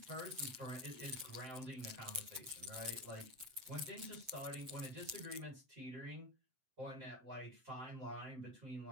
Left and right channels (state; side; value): late; left; 7.7 ms